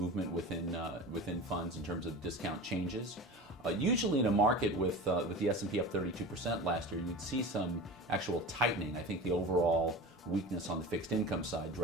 within funds in terms of discount changes. Usually in a market with the S&P up 32% last year, you'd see some actual tightening. I think the overall weakness on the fixed income side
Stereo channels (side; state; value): both; normal; correlation 0.32